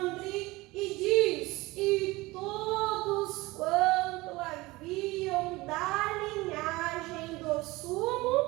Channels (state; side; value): quieter; left; 20.9 dB